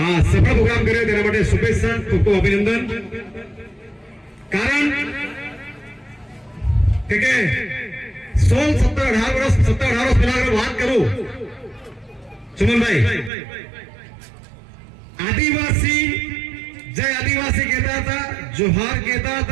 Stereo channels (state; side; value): drops out; left; at 13.3 s